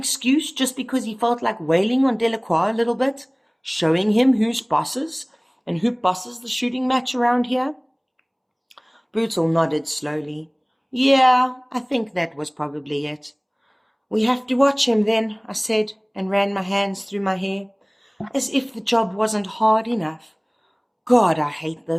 just because he felt like wailing on Delacroix a little bit, showing him who's bosses and who bosses the shooting match around here?" Brutal nodded slowly. "Yeah, I think that was probably it." "We have to watch him then," I said, and ran my hands through my hair, as if the job wasn't hard enough. God, I hate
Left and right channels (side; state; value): both; identical; correlation 1.00